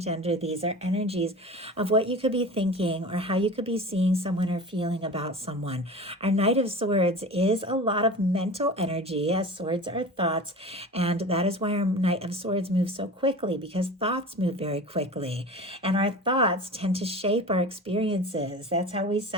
these are energies of what you could be thinking or how you could be seeing someone or feeling about someone. Our Knight of Swords is a lot of mental energy, as swords are thoughts, and that is why our Knight of Swords moves so quickly, because thoughts move very quickly, and our thoughts tend to shape our experiences. That's how we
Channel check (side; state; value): both; normal; correlation 0.35